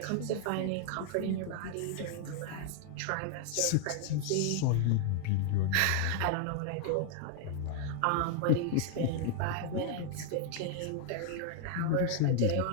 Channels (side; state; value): both; different; correlation 0.00